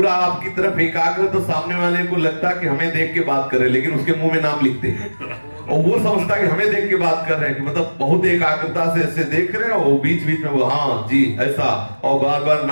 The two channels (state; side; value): inverted; both; correlation -1.00